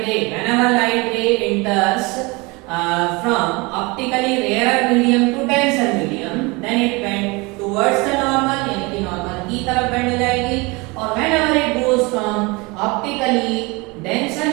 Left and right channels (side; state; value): left; quieter; 25.9 dB